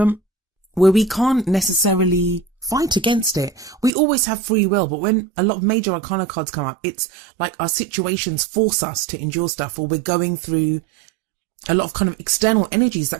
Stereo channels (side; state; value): left; drops out; at 3.9 s